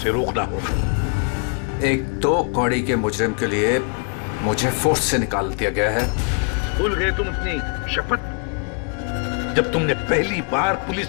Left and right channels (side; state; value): right; quieter; 36.3 dB